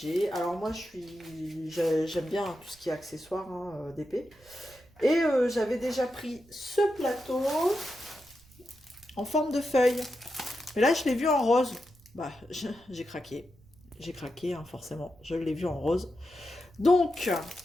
Alors moi, j'aime bien tout ce qui est accessoire, hein, d'épée. Et j'avais déjà pris ce plateau en forme de feuille. Mais là, je l'ai vu en rose. Bah, j'ai craqué. J'ai craqué, hein, forcément. Je l'ai vu en rose. Donc,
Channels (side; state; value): right; noise; rumble, 27 dB below the sound